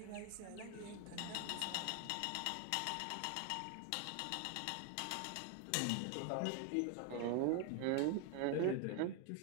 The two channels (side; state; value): both; different; correlation 0.01